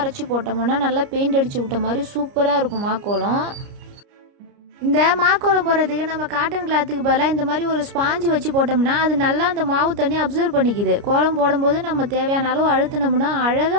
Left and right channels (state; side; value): late; left; 29 ms